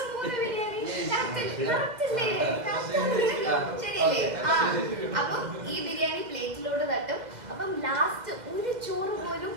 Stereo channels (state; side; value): late; left; 2.0 ms